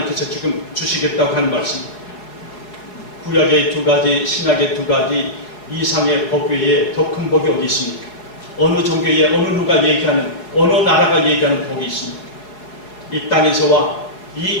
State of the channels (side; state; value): right; late; 4.7 ms